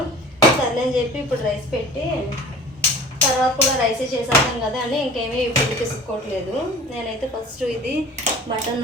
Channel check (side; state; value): both; normal; correlation 0.43